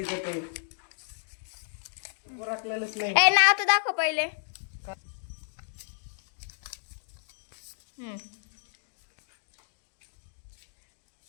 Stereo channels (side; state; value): right; silent; digital silence